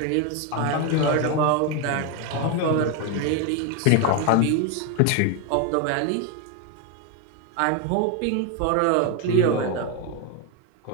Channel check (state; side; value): different; both; correlation 0.01